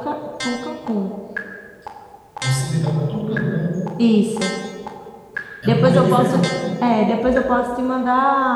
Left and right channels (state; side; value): identical; both; correlation 1.00